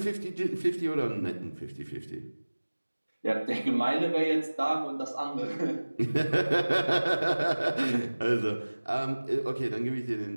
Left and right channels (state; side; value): inverted; both; correlation -1.00